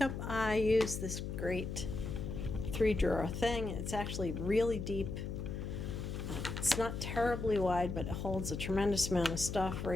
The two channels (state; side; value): noise; left; hum, 5 dB below the sound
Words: I used this great 3-drawer thing. It's actually really deep. It's not terribly wide, but it holds a tremendous amount of stuff.